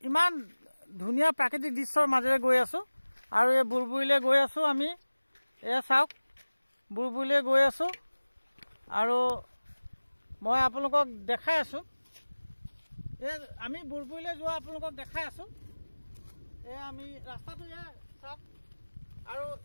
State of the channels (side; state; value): both; inverted; correlation -1.00